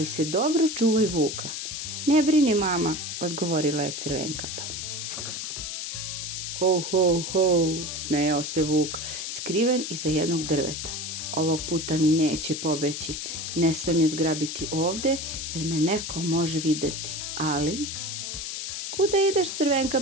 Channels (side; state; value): left; noise; hiss, 5 dB below the sound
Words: se dobro čuvaj vuka. Ne brini, mama, odgovorila je Crvenkapa. Ho, ho, ho, smejao se vuk, skriven iza jednog drveta. Ovog puta mi neće pobeći, ne smem je zgrabiti ovde, jer me neko može videti, ali... Kuda ideš,